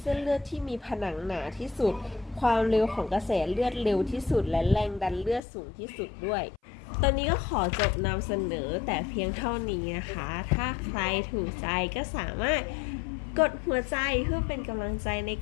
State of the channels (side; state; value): right; drops out; at 5.4 s